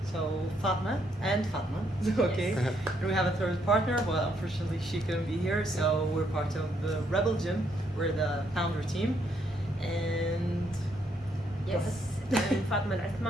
So Fatma and Fatma, okay. And we have a third partner, but unfortunately she couldn't be here. So we're part of the Rebel Gym. We're the founder team, and Yes, I'm Fatma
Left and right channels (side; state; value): both; normal; correlation 0.73